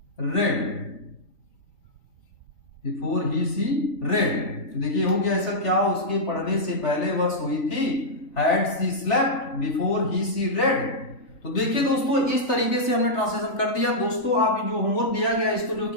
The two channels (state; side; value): late; right; 3.3 ms